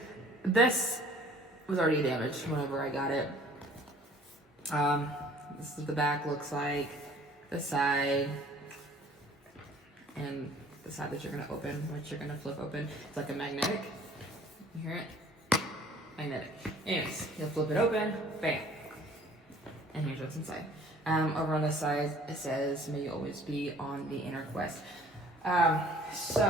this was already damaged whenever I got it. This is what the back looks like, the side, and the side that you're gonna open, which you're gonna flip open. It's like a magnetic. You hear it? Magnetic. Anyways, you'll flip it open, bam. And here's what's inside. Over on this side, it says, "May you always be on the inner quest."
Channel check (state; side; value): normal; both; correlation 0.53